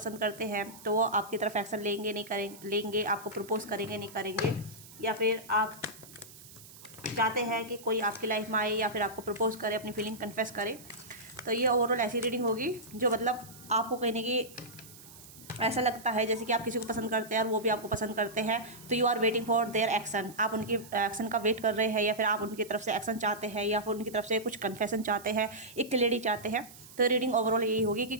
करते हैं, तो वो आपकी तरफ एक्शन लेंगे नहीं करेंगे, लेंगे, आपको प्रपोज करेंगे नहीं करेंगे, या फिर आप चाहते हैं कि कोई आपकी लाइफ में आए या फिर आपको प्रपोज करे, अपनी फीलिंग कन्फेस करे। तो ये ओवरऑल ऐसी रीडिंग होगी जो मतलब आपको कहीं ना कहीं ऐसा लगता है जैसे कि आप किसी को पसंद करते हैं और वो भी आपको पसंद करते हैं। तो you are waiting for their action, आप उनकी एक्शन का वेट कर रहे हैं, या फिर आप उनकी तरफ से एक्शन चाहते हैं, या फिर उनकी तरफ से कुछ कन्फेशन चाहते हैं, एक क्लैरिटी चाहते हैं। तो रीडिंग ओवरऑल यही होगी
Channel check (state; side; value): noise; right; hiss, 19 dB below the sound